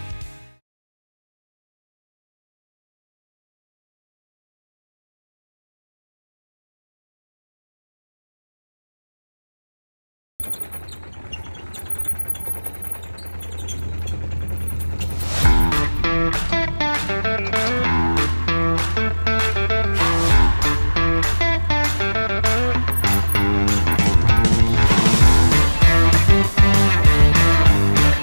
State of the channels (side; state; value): both; inverted; correlation -1.00